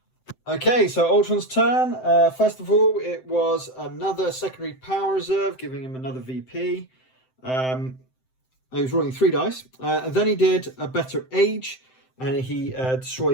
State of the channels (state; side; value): late; right; 7.8 ms